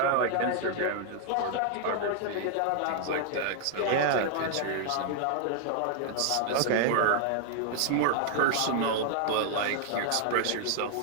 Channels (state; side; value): different; both; correlation 0.00